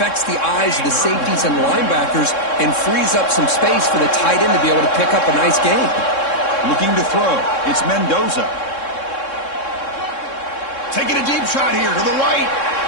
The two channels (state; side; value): late; right; 3.6 ms